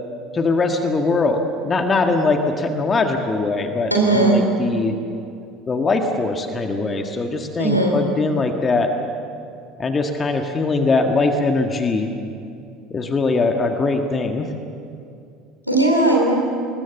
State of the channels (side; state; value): both; normal; correlation 0.50